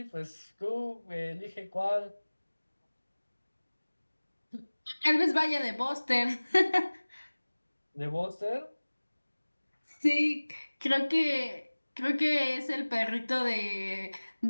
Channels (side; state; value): both; inverted; correlation -1.00